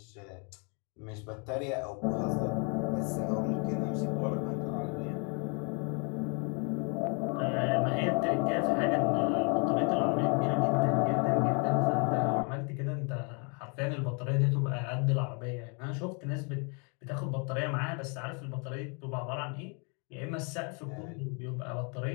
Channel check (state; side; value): quieter; right; 35.8 dB